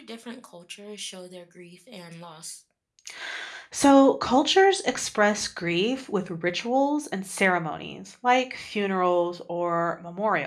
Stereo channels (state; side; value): identical; both; correlation 1.00